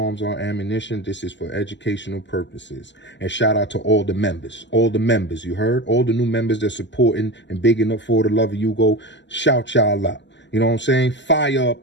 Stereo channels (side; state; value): right; late; 0.53 ms